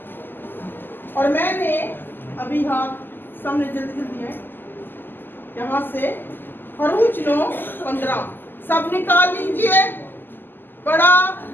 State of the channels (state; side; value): late; right; 0.094 ms